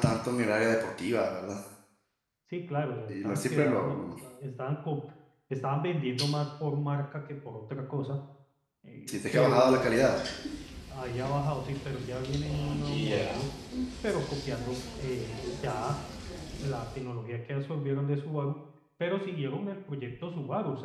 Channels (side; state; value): both; identical; correlation 1.00